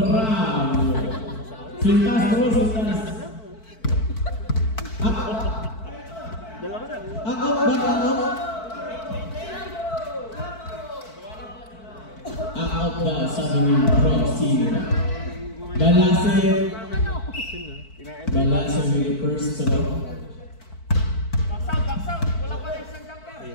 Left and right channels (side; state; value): right; late; 4.5 ms